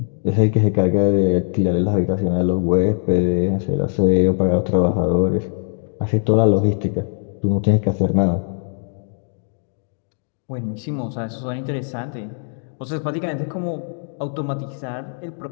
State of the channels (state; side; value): silent; right; 62 dB below the other